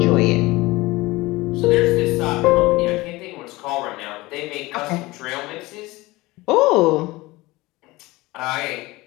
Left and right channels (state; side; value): quieter; right; 20.7 dB